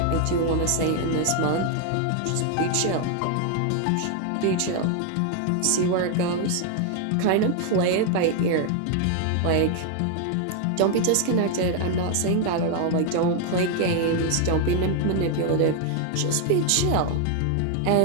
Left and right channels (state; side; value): different; both; correlation 0.00